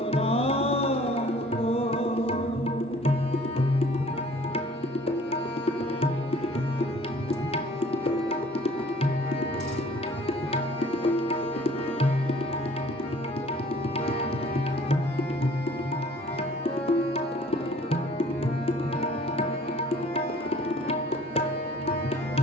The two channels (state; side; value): normal; both; correlation 0.53